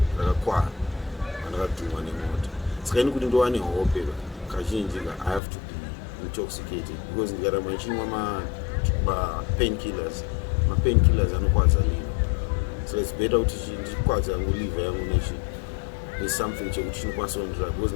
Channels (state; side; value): drops out; right; at 5.4 s